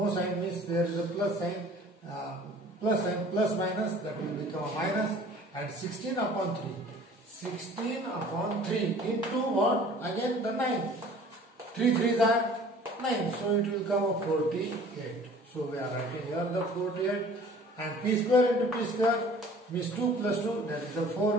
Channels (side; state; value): both; normal; correlation 0.49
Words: sign means there is a plus sign, plus minus, that will become a minus, and 16 upon 3. 16 upon 3 into what? Again the 9. 3 3s are 9, so it will come a 48. So we are writing here the 48, and p square into p square means 2 plus 2, that is the